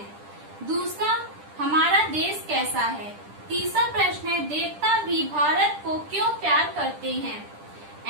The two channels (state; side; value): late; left; 10 ms